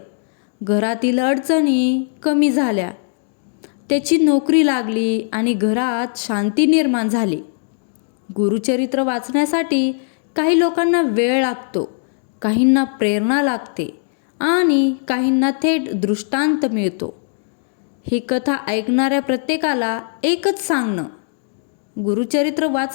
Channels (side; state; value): right; silent; digital silence